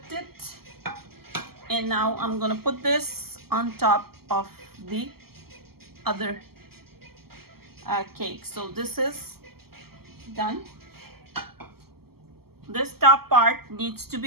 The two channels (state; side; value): late; left; 0.95 ms